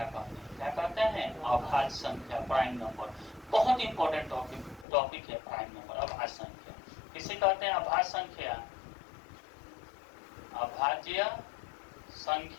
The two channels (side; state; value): right; drops out; at 4.9 s